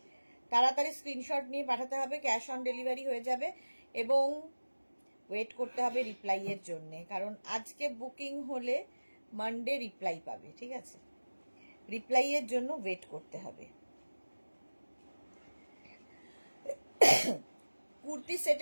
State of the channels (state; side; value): inverted; both; correlation -1.00